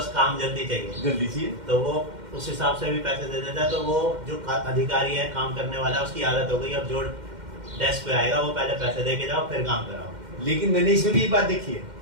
काम जल्दी चाहिए, जल्दी चाहिए, तो वो उस हिसाब से भी पैसे दे देता है। तो वो जो अधिकारी है, काम करने वाला, उसकी आदत हो गई अब जो डेस्क पे आएगा वो पहले पैसे दे के जाओ फिर काम कराओ। लेकिन मैंने इसमें भी एक बात देखी है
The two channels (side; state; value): left; late; 2.1 ms